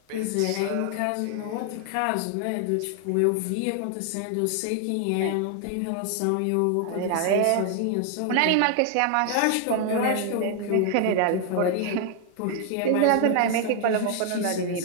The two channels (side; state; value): both; different; correlation 0.00